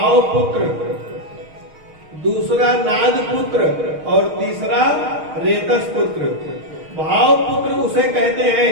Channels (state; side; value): late; left; 6.4 ms